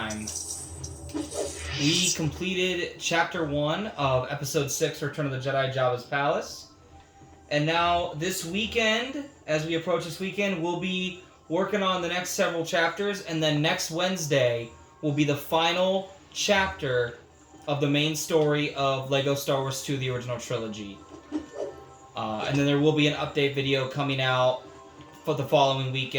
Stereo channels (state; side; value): identical; both; correlation 1.00